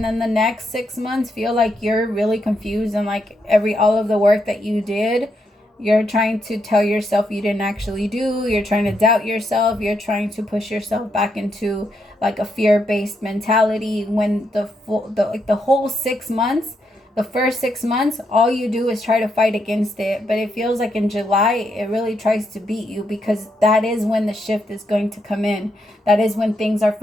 then the next 6 months feel like you're really confused. And like all of the work that you did, you're trying to tell yourself you didn't actually do. You're trying to doubt yourself. You're trying to push yourself back into like a fear-based mentality, when the whole 6 months, the first 6 months, all you do is try to fight against it. But it feels like in July, it really tries to beat you, because that is when the shift is going to come in. That is when things are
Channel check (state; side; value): normal; both; correlation 0.80